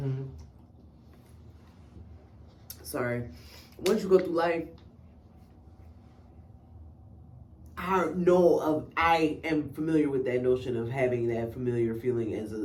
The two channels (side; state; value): both; identical; correlation 1.00